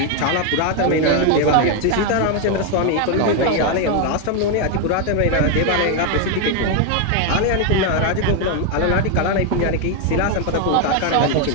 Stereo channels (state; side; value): different; both; correlation 0.01